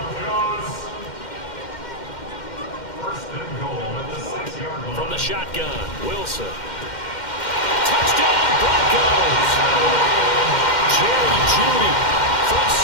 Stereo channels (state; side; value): late; right; 2.1 ms